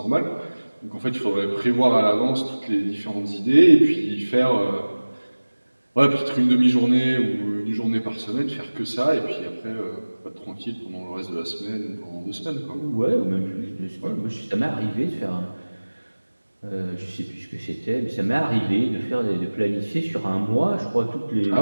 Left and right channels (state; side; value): inverted; both; correlation -1.00